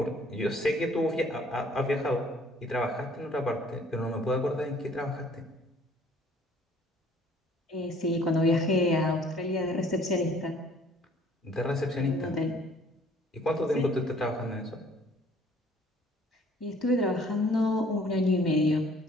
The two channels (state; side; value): normal; both; correlation 0.56